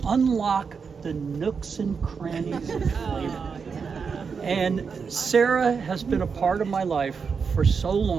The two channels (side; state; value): left; quieter; 5.7 dB